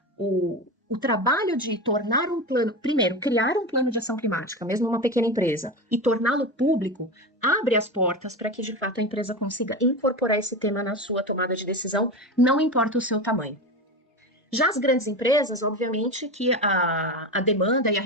o trabalho de tornar um plano, primeiro, criar um plano de ação climática, mesmo uma pequena empresa, e torná-lo público, abre as portas para que, de fato, a empresa consiga incorporar esse tema na sua tomada de decisão, não importa o seu tamanho. Já as grandes empresas, obviamente que a demanda e a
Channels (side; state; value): both; normal; correlation 0.23